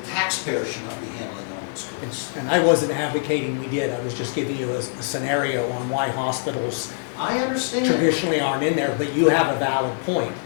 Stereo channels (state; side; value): silent; right; 63 dB below the other